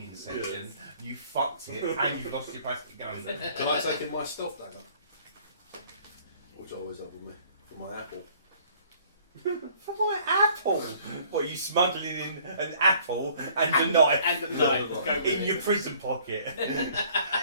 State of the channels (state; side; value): inverted; both; correlation -0.56